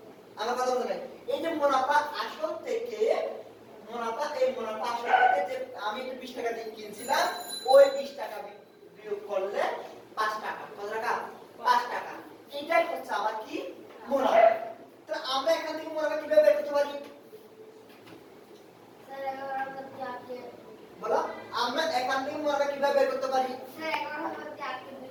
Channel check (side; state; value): both; identical; correlation 1.00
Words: আমার কথা বুঝলেন এই যে মুনাফা আসল থেকে মুনাফা এই মুনাফা আসল থেকে যে আমি 20 টাকা দিয়ে কিনছিলাম ওই 20 টাকা বিয়োগ করলে 5 টাকা কত টাকা 5 টাকা এটাই হচ্ছে আমার কি মুনাফা তো আমরা এখান থেকে মুনাফা কিভাবে বের করতে পারি স্যার 11 প্রতি 8 কে বলো আমরা এখান থেকে মুনাফা কিভাবে বের করতে পারি স্যার 11 প্রতি 8 কে